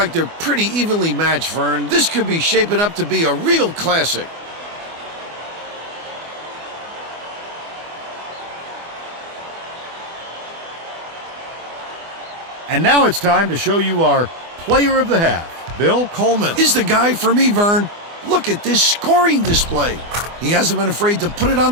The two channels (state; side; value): late; left; 24 ms